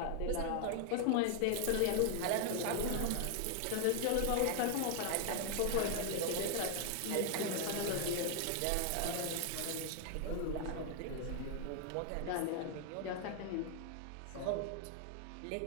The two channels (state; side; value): different; both; correlation 0.00